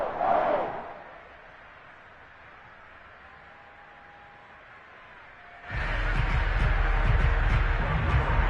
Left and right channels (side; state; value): both; identical; correlation 1.00